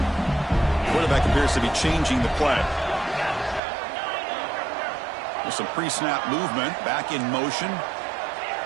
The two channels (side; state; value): left; drops out; at 3.6 s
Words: Quarterback appears to be changing the play. With some pre-snap movement, back in motion.